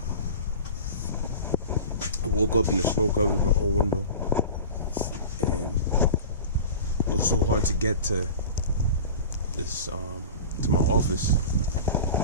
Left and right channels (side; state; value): both; inverted; correlation -0.35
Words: I woke up and the snow covered my whole window, and it was so hard to get to this to my office,